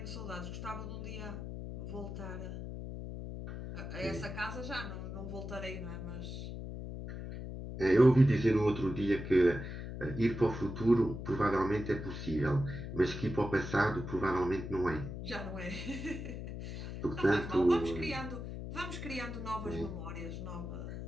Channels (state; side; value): noise; left; hum, 7 dB below the sound